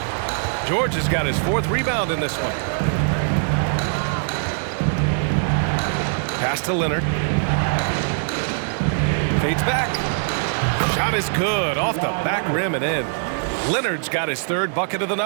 George has got his 4th rebound in this one. Pass to Leonard. Fades back. Shot is good off the back rim and in. Leonard's got his 3rd bucket of the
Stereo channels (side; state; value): left; silent; digital silence